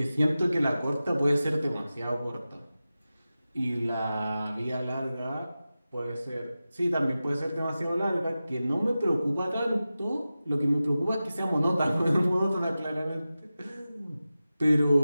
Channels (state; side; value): inverted; both; correlation -0.94